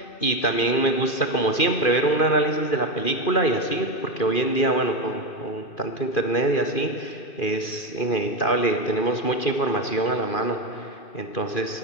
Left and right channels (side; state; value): right; late; 2.4 ms